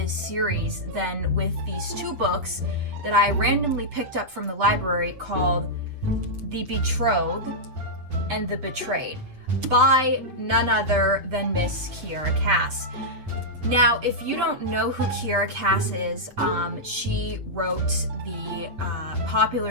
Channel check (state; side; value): late; left; 8.0 ms